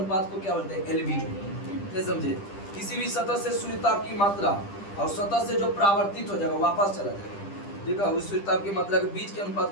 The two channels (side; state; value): right; late; 10 ms